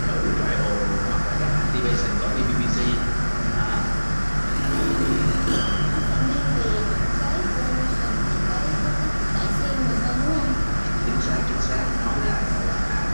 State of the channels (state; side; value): inverted; both; correlation -1.00